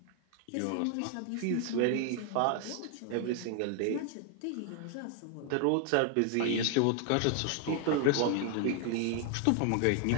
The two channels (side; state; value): both; different; correlation 0.00